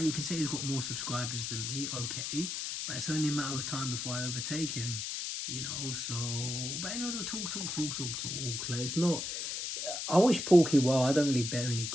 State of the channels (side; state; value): left; noise; hiss, 3 dB below the sound